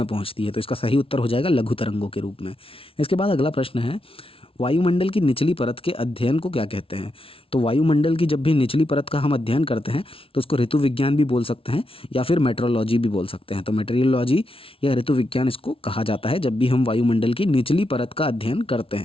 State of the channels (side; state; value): right; late; 0.26 ms